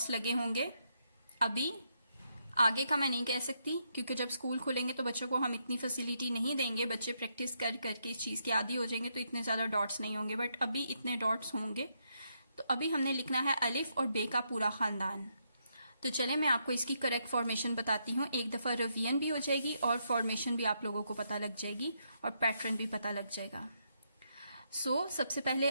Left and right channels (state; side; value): inverted; both; correlation -0.78